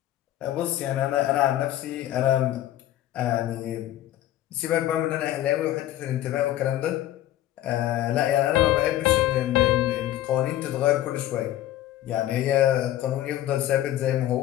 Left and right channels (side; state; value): right; quieter; 13.5 dB